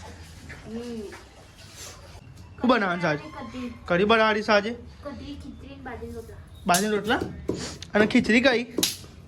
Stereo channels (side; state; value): both; identical; correlation 1.00